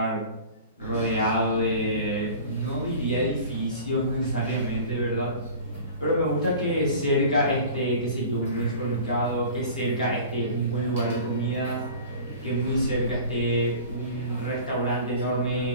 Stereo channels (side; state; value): both; inverted; correlation -0.40